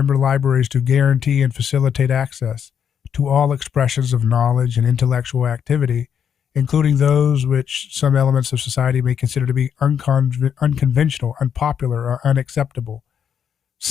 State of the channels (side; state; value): right; quieter; 8.1 dB